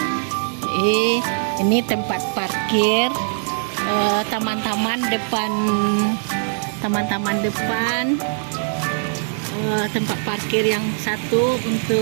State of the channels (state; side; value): silent; left; 65 dB below the other